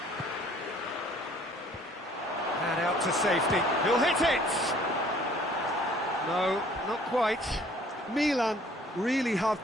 And out to safety. He'll hit it! No, not quite. Milan really have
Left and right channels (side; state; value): both; normal; correlation 0.56